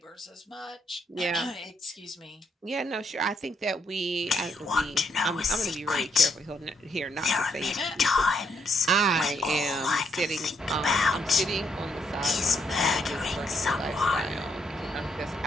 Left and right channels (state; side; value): normal; both; correlation 0.75